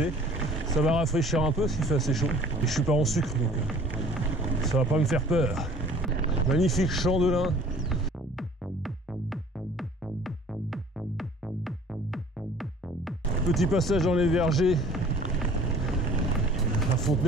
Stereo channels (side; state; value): both; normal; correlation 0.51